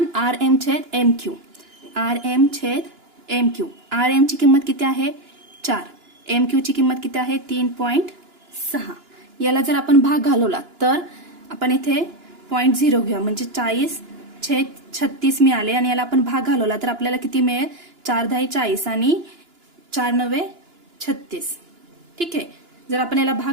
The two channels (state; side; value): late; left; 2.9 ms